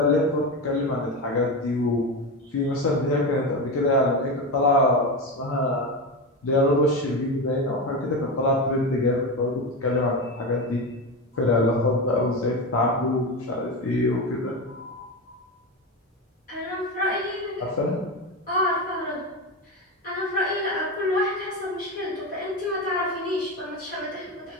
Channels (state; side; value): normal; both; correlation 0.18